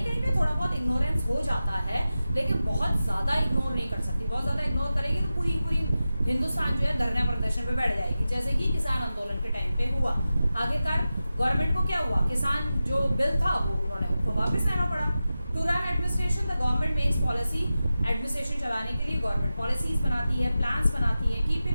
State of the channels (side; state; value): both; inverted; correlation -0.93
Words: कहीं पे थोड़ा बहुत इग्नोरेंस हो जाता है, लेकिन बहुत ज़्यादा इग्नोर नहीं कर सकती। बहुत ज़्यादा इग्नोर करेगी तो पूरी पूरी हिंदुस्तान जो है धरना प्रदर्शन पे बैठ जाएगी, जैसे कि किसान आंदोलन के टाइम पे हुआ। आखिरकार गवर्नमेंट को क्या हुआ, किसान जो बिल था वो उन्होंने उनको वापस लेना पड़ा। To run administration the government makes policy, administration चलाने के लिए गवर्नमेंट पॉलिसीज बनाती है, प्लान्स बनाती है। Keep